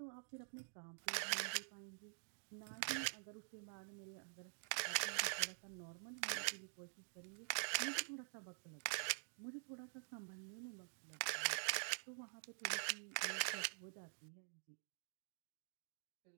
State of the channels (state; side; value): silent; left; digital silence